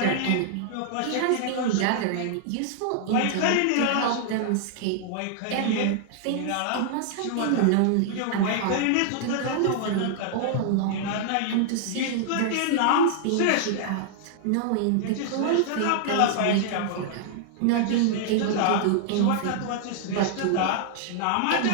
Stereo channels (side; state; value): both; different; correlation -0.01